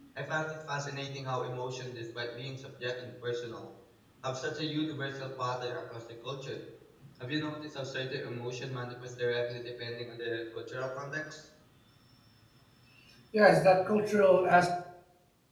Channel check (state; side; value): identical; both; correlation 1.00